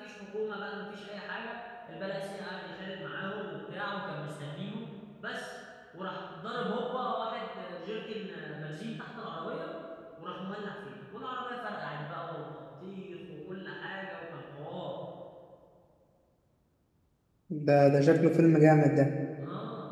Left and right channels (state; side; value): identical; both; correlation 1.00